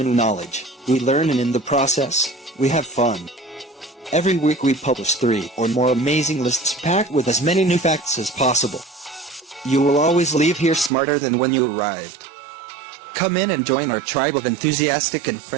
knowledge. We learn, and in the process, we have fun. Every week we publish 3 or more amazing lists packed with as many new facts as possible. You will always leave here smarter than when you arrived. Come in and join our tribe of enthusiastic and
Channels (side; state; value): left; drops out; at 10.9 s